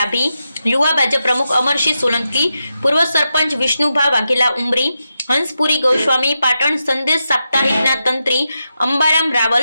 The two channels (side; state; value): both; inverted; correlation -0.87